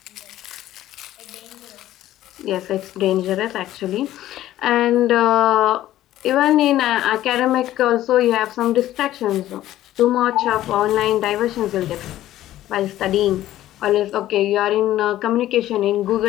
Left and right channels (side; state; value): right; quieter; 13.8 dB